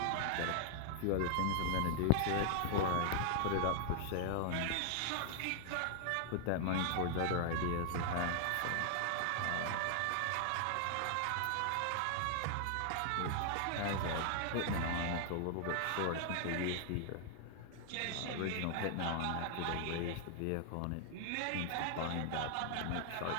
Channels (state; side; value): different; both; correlation 0.00